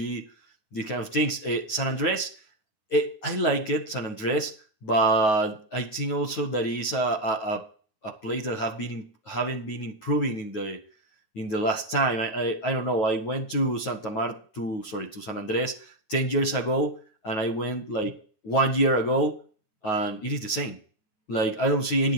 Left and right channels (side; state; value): right; late; 9.3 ms